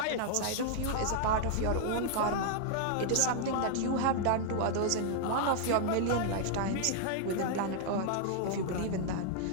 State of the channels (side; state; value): both; different; correlation 0.00